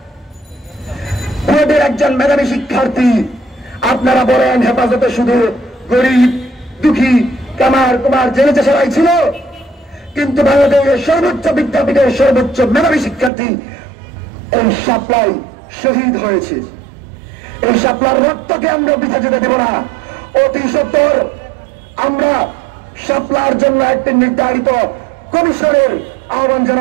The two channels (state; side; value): drops out; left; at 13.3 s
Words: বুয়েটের একজন মেধাবী শিক্ষার্থী। আপনারা বলেন হেফাজতে শুধু গরিব, দুঃখী, কামার কুমার জেলে চেষারাই ছিল, কিন্তু বাংলাদেশের সর্বোচ্চ বিদ্যাপীঠের সর্বোচ্চ মেধাবী শিক্ষার্থী এই শাপলায় শহীদ হয়েছে। এই শাপলার রক্তকে আমরা বৃথা যেতে দেব না। অতি সত্বর আমরা শাপলার জন্য একটি নির্ধারিত কমিশনের আহ্বান